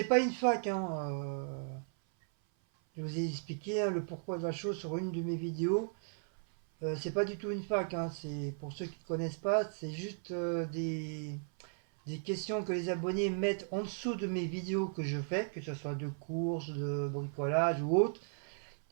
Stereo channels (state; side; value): silent; left; 54 dB below the other